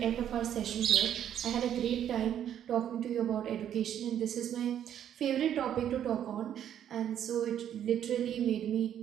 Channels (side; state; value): left; quieter; 10.0 dB